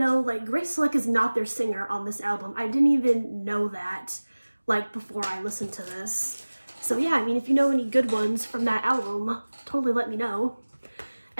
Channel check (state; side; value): inverted; both; correlation -1.00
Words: like, Grace Slick is not their singer on this album. I didn't even know that, like, before I listened to this. So yeah, I mean, if you know any good ones from that album, totally let me know.